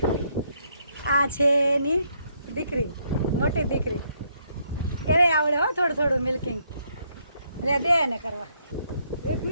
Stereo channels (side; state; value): both; inverted; correlation -0.73